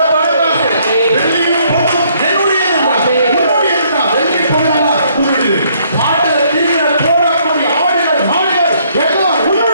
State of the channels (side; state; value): both; inverted; correlation -0.67